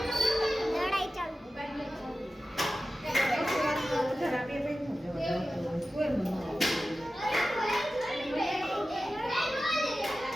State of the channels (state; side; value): normal; both; correlation 0.94